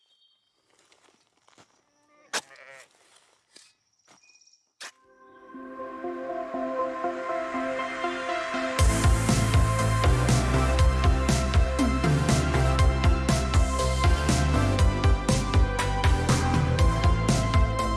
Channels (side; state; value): both; identical; correlation 1.00